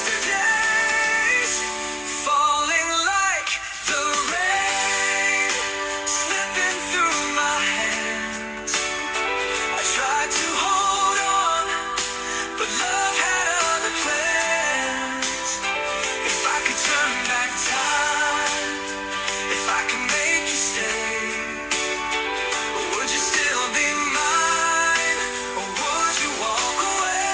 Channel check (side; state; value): both; identical; correlation 1.00